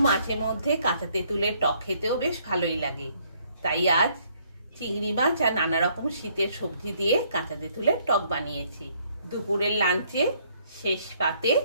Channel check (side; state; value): both; inverted; correlation -0.66